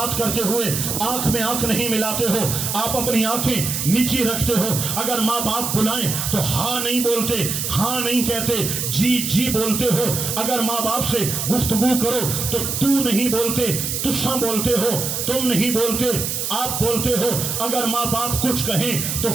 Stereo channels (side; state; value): right; noise; hiss, 2 dB below the sound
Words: کرتے ہوئے آنکھ میں آنکھ نہیں ملاتے ہو، آپ اپنی آنکھیں نیچی رکھتے ہو، اگر ماں باپ بلائیں تو ہاں نہیں بولتے، ہاں نہیں کہتے، جی جی بولتے ہو، اگر ماں باپ سے گفتگو کرو تو تو نہیں بولتے، تساں بولتے ہو، تم نہیں بولتے، آپ بولتے ہو، اگر ماں باپ کچھ کہیں تو